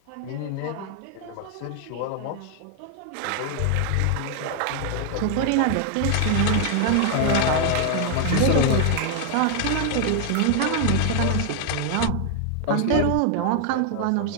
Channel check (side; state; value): both; different; correlation 0.00